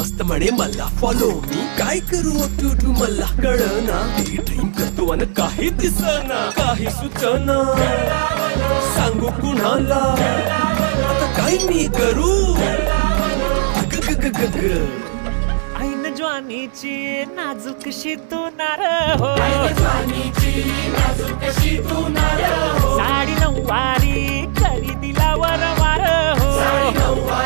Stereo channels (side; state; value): left; silent; 61 dB below the other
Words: म्हणे मला फॉलो मी काय करू तू मला कळना ड्रीम करतो आणि काही दिसना काही सुचना सांगू कुणाला आता काय मी करू ऐन ज्वानीची नाजूकशी तू नार हो साडी नऊवारी करी दिला वरवार हो